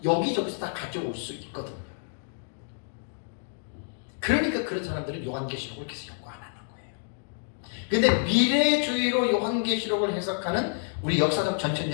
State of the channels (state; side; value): silent; right; 57 dB below the other